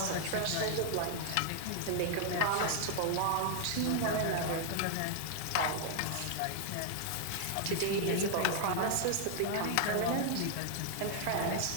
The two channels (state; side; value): different; both; correlation 0.00